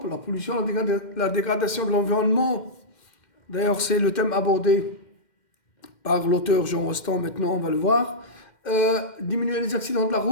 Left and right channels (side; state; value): right; late; 2.1 ms